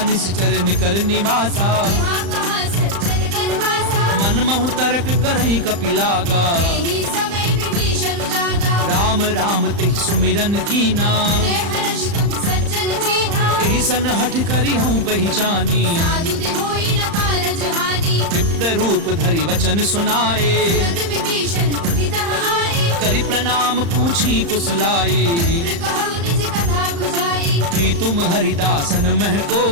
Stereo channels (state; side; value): late; left; 35 ms